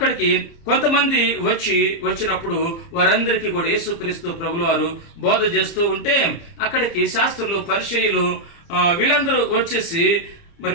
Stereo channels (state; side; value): late; right; 30 ms